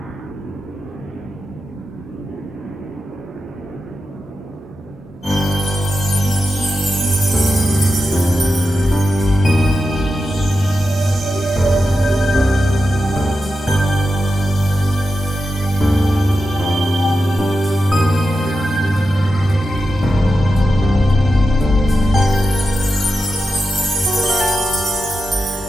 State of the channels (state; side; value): normal; both; correlation 0.89